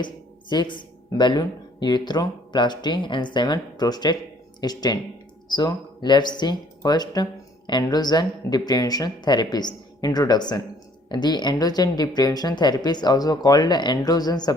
sixth balloon urethroplasty, and seventh prostate stent. So let's see first androgen deprivation therapies. Introduction. The androgen deprivation therapies also called androgen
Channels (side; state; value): both; normal; correlation 0.60